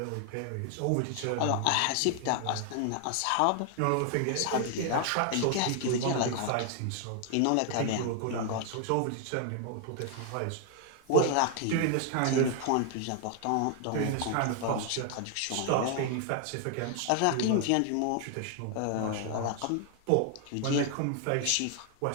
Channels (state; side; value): different; both; correlation 0.00